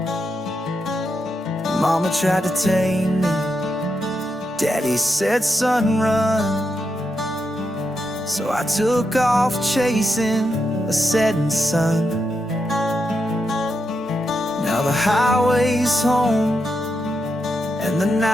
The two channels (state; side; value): normal; both; correlation 0.85